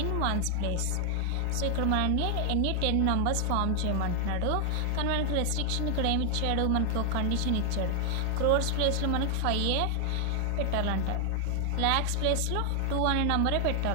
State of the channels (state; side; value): different; both; correlation 0.00